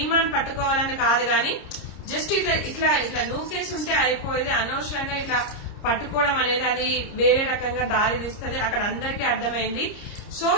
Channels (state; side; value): late; right; 30 ms